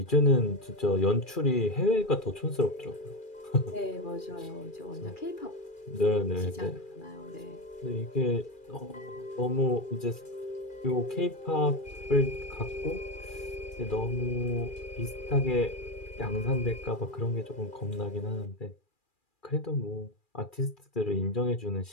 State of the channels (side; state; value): right; late; 2.4 ms